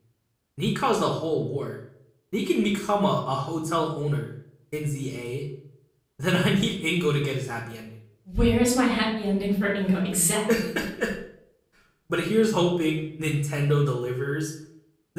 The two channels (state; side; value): identical; both; correlation 1.00